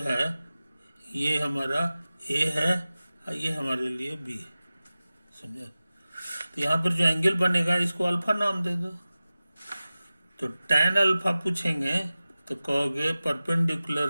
ये हमारा A है और ये हमारे लिए B है, समझे? तो यहाँ पर जो एंगल बनेगा इसको अल्फा नाम दे दो। तो tan अल्फा पूछेंगे तो कहोगे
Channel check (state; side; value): inverted; both; correlation -0.96